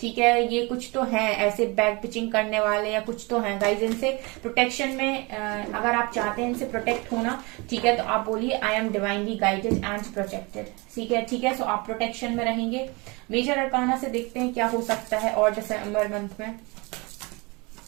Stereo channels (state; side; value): quieter; left; 27.1 dB